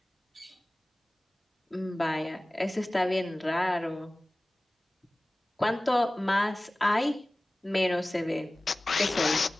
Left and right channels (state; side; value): normal; both; correlation 0.98